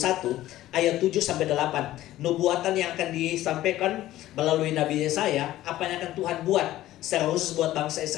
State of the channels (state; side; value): quieter; right; 14.8 dB